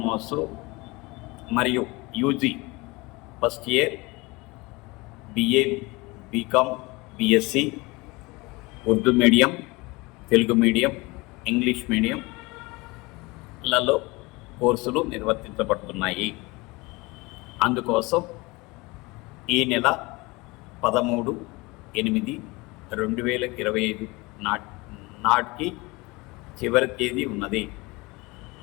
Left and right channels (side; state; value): right; quieter; 24.0 dB